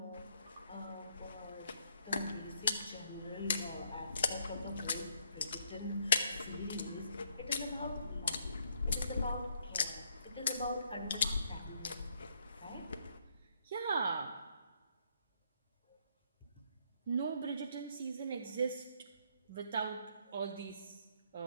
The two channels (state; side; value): inverted; both; correlation -0.70